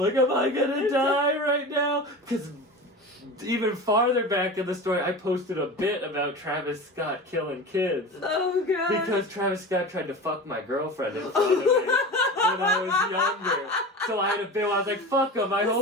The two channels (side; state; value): both; normal; correlation 0.31